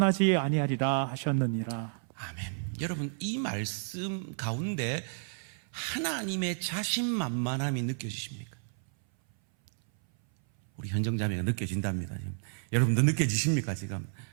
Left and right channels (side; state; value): left; silent; 57 dB below the other